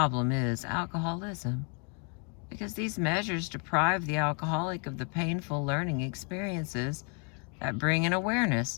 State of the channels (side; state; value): right; quieter; 37.4 dB